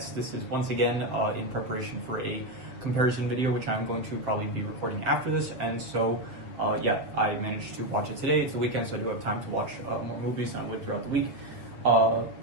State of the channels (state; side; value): late; left; 7.5 ms